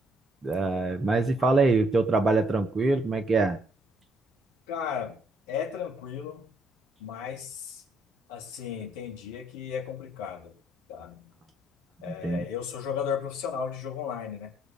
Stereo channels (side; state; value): both; normal; correlation 0.70